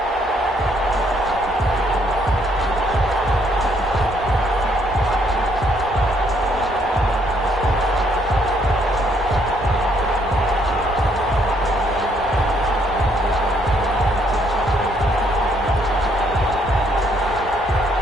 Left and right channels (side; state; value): both; normal; correlation 0.69